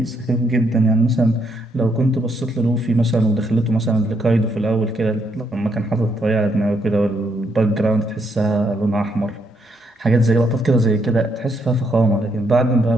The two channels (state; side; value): normal; both; correlation 0.75